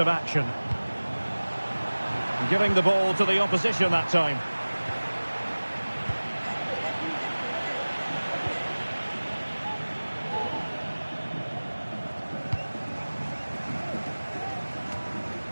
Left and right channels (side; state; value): both; inverted; correlation -1.00